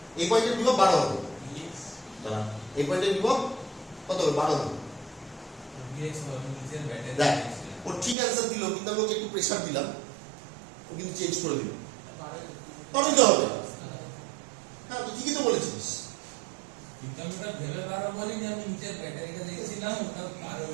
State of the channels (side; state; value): left; drops out; at 8.2 s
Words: এই পয়েন্টের বিভব 12 হবে। এই পয়েন্টের বিভব কত হবে? 12 হবে। দেখ ও ঠিক অ্যান্সার দিল, কিন্তু আমি ওকে একটু প্রেসার দিলাম, ও কিন্তু চেঞ্জ করে দিল। তবে তো হবে, হ্যাঁ তুই ঠিকই তো বলেছিস।